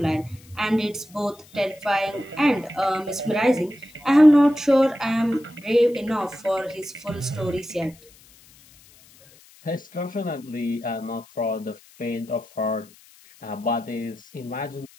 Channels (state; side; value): noise; left; hiss, 26 dB below the sound